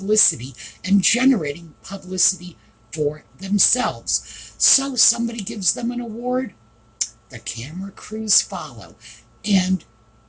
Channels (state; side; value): identical; both; correlation 1.00